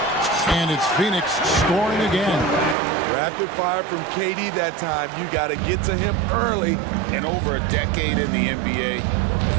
And it's Phoenix scoring again. Rapid fire from KD that time. You got to get to him early. And over a decade in the NBA,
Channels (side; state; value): left; drops out; at 2.8 s